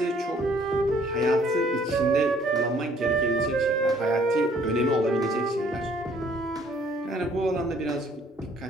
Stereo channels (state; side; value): normal; both; correlation 0.60